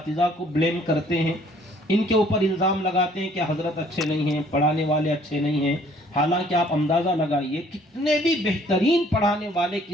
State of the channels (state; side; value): normal; both; correlation 0.59